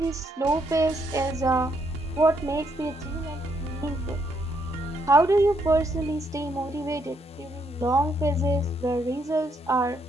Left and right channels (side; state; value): both; normal; correlation 0.74